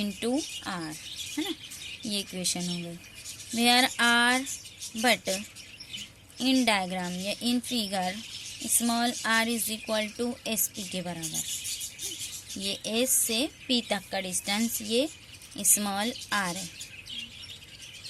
आर, है ना. ये इक्वेशन हो गई. Where R but in diagram या in figure small R is equal to S P के बराबर. ये एस से पी तक का डिस्टेंस ये स्मॉल आर है.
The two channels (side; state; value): both; identical; correlation 1.00